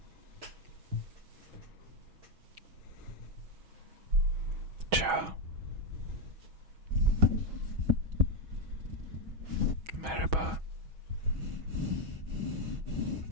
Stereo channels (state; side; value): late; left; 6.2 ms